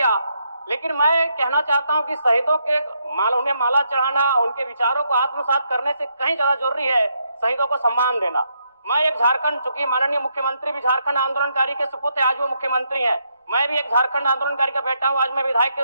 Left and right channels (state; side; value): inverted; both; correlation -0.77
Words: लेकिन मैं कहना चाहता हूं कि शहीदों के उन्हें माला चढ़ाना, उनके विचारों को आत्मसात करने से कहीं ज्यादा जरूरी है शहीदों को सम्मान देना। मैं एक झारखंड, चूंकि माननीय मुख्यमंत्री भी झारखंड आंदोलनकारी के सुपुत्र आज वो मुख्यमंत्री हैं, मैं भी एक झारखंड आंदोलनकारी का बेटा हूं, आज मैं विधायक के